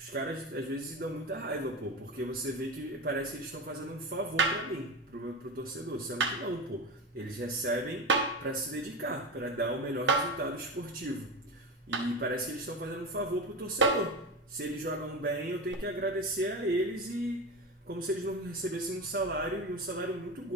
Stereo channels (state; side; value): normal; both; correlation 0.22